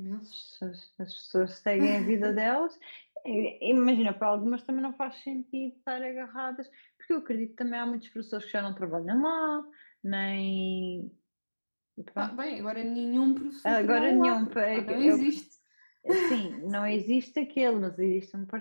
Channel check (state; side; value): inverted; both; correlation -1.00